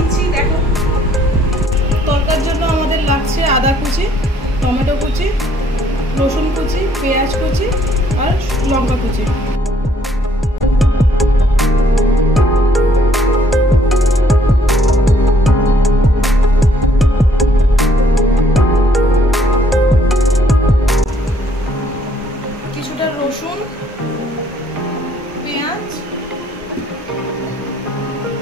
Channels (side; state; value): both; normal; correlation 0.64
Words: দেখো। তরকার জন্য আমাদের লাগছে আদা কুচি, টমেটো কুচি, রসুন কুচি, পেঁয়াজ কুচি আর লঙ্কা কুচি। কিছুটা রসুন, পেঁয়াজ,